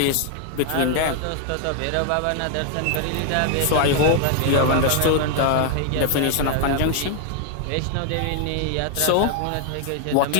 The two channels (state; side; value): different; both; correlation 0.00